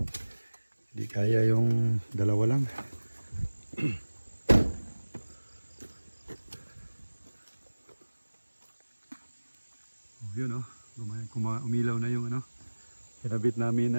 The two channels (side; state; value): both; inverted; correlation -1.00